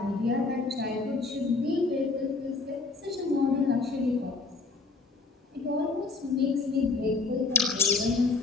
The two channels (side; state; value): right; quieter; 4.0 dB